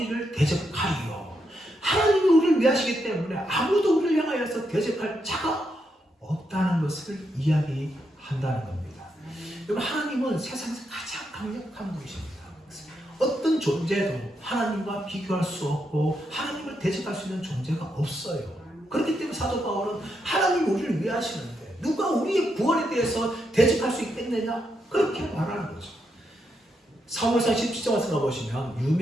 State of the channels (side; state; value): both; normal; correlation 0.81